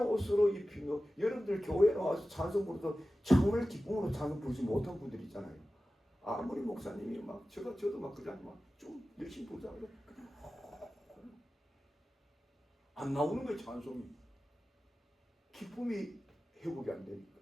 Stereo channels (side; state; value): both; normal; correlation 0.95